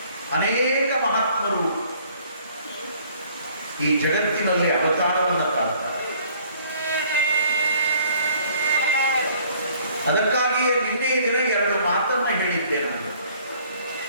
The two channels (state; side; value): inverted; both; correlation -0.58